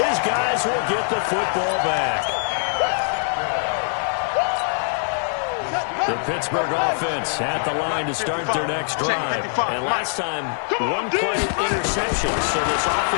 guys will get the football back. The Pittsburgh offense at the line to start their next drive. And last time, 1-play interception. So this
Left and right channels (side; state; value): right; silent; 60 dB below the other